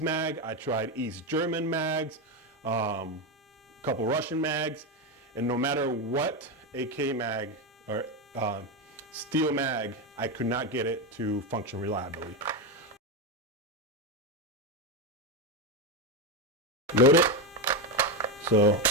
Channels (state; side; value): normal; both; correlation 0.12